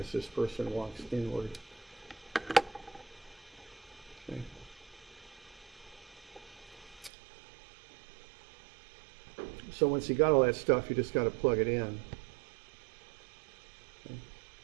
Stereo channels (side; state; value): left; drops out; at 7.1 s